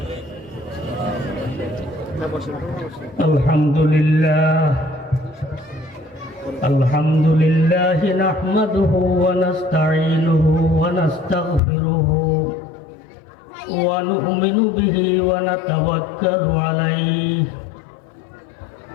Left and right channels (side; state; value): right; drops out; at 11.6 s